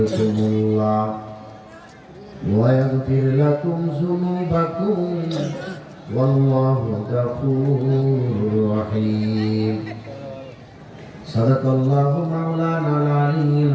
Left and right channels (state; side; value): identical; both; correlation 1.00